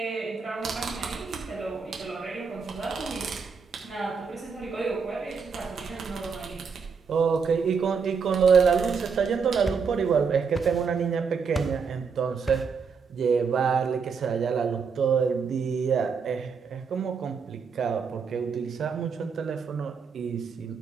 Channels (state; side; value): quieter; left; 5.7 dB